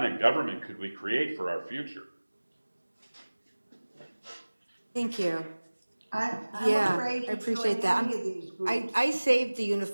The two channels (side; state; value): both; inverted; correlation -1.00